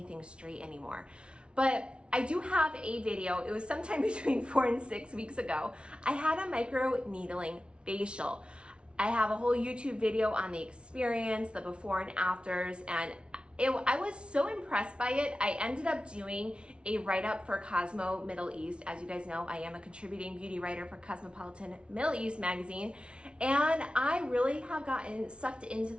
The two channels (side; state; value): left; late; 0.058 ms